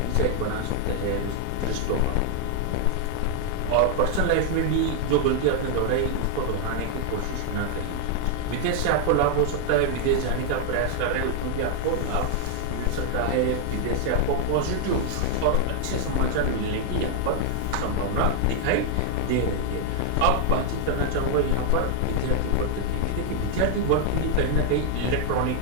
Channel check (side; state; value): both; different; correlation 0.00